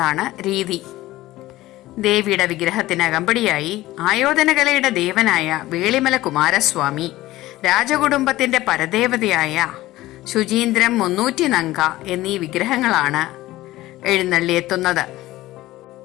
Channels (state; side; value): quieter; right; 16.8 dB